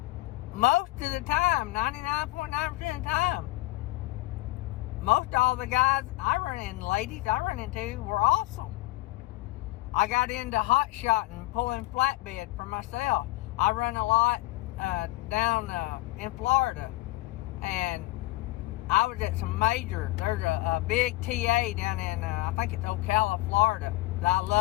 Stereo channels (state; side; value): quieter; right; 19.2 dB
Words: most of the time, 99.9% of the time, most all the guys I run into, ladies I run into, were awesome. I got into hot shotting, pulling flatbed for myself. I run a lot down in Florida, and I was at some there's a big TA down in, I think it's Ocala, Florida, that I